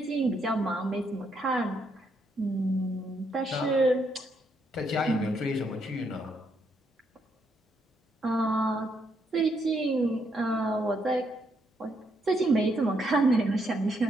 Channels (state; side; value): normal; both; correlation 0.76